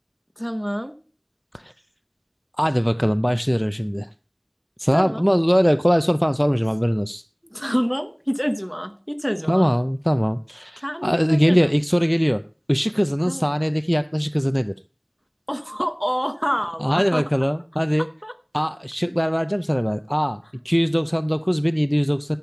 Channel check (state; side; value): identical; both; correlation 1.00